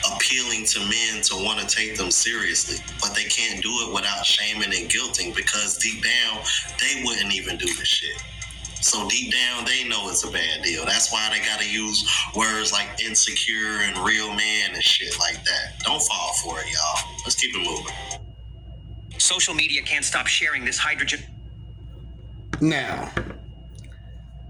appealing to men to want to take them seriously. But they can't do it without shaming and guilting, because deep down, they wouldn't even do this shit. So deep down, they know it's a bad deal. That's why they gotta use words like insecure and real man and shit like that. Don't fall for it, y'all. Let's keep it moving. Social media can't stop sharing this hydrogen. Now,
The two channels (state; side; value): identical; both; correlation 1.00